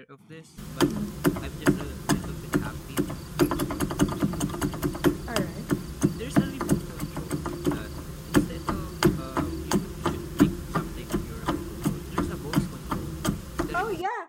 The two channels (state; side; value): identical; both; correlation 1.00